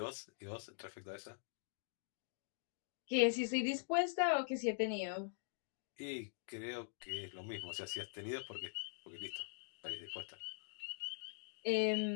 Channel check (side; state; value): right; silent; digital silence